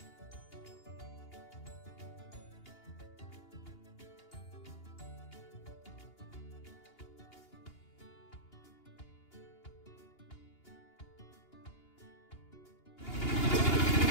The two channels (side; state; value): right; late; 2.8 ms